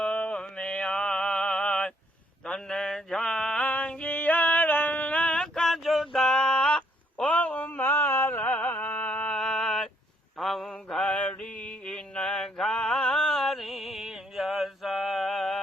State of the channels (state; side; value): normal; both; correlation 0.70